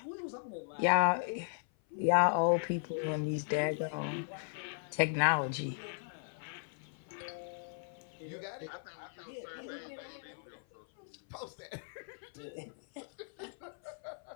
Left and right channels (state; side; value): silent; right; 53 dB below the other